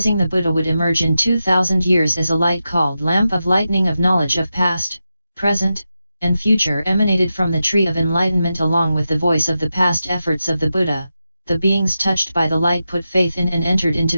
the Buddha would emerge in 2,000 years as a light called lamp of lightning of knowledge of past, present, and future emanated from the tree of enlightenment along with the voice of the past efforts of the Buddha, the beings touched by the light put faith in and entered into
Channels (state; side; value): inverted; both; correlation -0.90